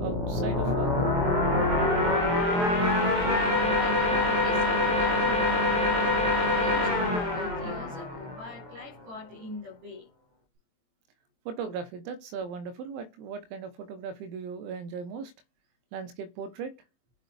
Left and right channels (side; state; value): left; late; 23 ms